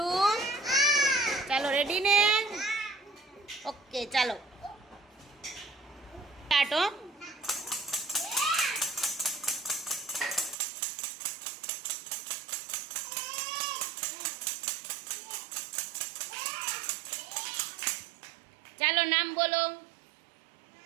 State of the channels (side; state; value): left; drops out; at 10.6 s